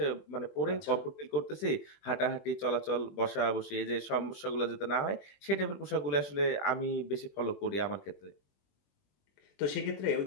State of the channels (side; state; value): right; late; 21 ms